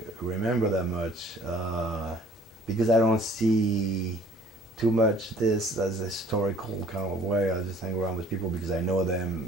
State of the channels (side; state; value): both; normal; correlation 0.54